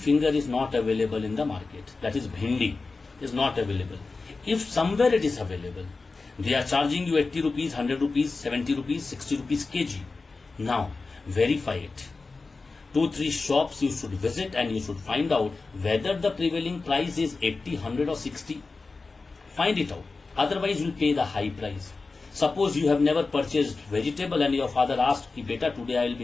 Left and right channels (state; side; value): quieter; right; 3.9 dB